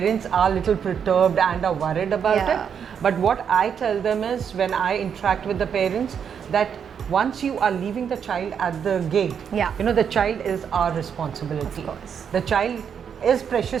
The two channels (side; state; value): left; quieter; 7.6 dB